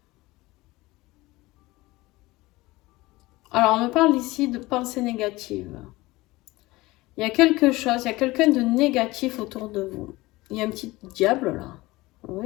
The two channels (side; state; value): right; quieter; 20.2 dB